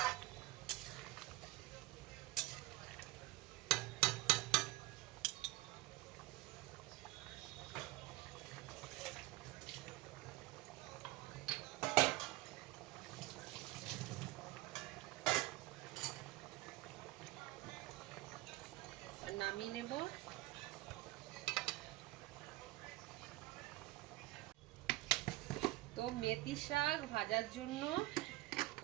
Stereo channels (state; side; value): quieter; left; 18.9 dB